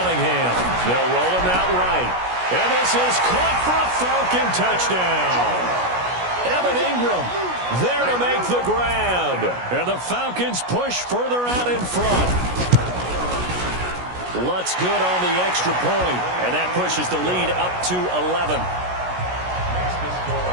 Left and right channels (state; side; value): late; left; 16 ms